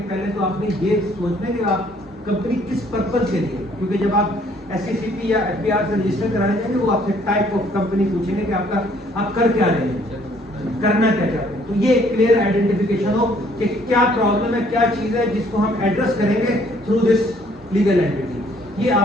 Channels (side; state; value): both; normal; correlation 0.62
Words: پہلے تو آپ نے یہ سوچنا ہے کہ آپ کمپنی کس پرپز کے لیے, کیونکہ جب آپ SECP یا FBR سے رجسٹر کرانے جائیں گے وہ آپ سے ٹائپ آف کمپنی پوچھیں گے کہ آپ کر کیا رہے ہیں, کرنا کیا چاہتے ہیں. تو یہ کلیئر آئیڈینٹیفیکیشن ہو کہ کیا پرابلم ہے, کیا چیز ہے جس کو ہم ایڈریس کریں گے تھرو دس لیگل اینٹیٹی, یہ